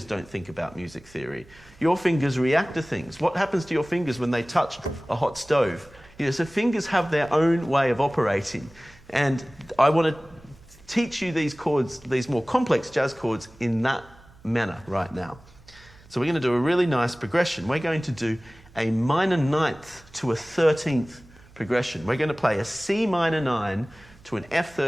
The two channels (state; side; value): noise; right; hum, 25 dB below the sound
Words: don't think about music theory. Your fingers react to things. What happens to your fingers when they touch a hot stove? So fingers have their own way of operating, and I want to teach you these chords, these more complex jazz chords, in that manner right now. So we're going to do a really nice progression. We're going to do a minor ninth to a 13th progression. We're going to play a C minor 9 to an